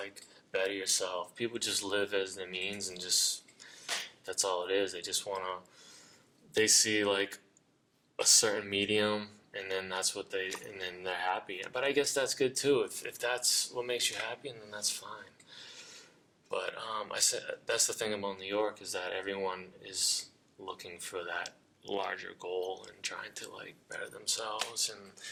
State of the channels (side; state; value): both; identical; correlation 1.00